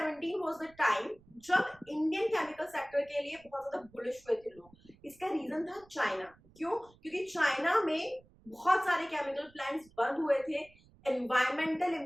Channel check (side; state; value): right; noise; rumble, 27 dB below the sound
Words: वाज द टाइम जब इंडियन केमिकल सेक्टर के लिए बहुत ज्यादा बुलिश हुए थे लोग। इसका रीजन था चाइना। क्यों? क्योंकि चाइना में बहुत सारे केमिकल प्लांट्स बंद हुए थे, एनवायरमेंटल